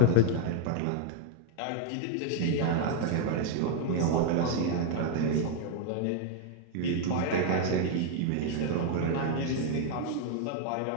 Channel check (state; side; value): different; both; correlation 0.00